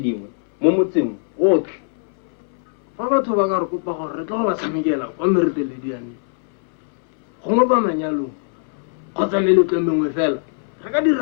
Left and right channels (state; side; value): silent; right; 61 dB below the other